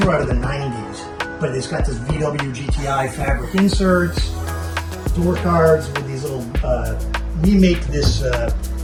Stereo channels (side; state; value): both; identical; correlation 1.00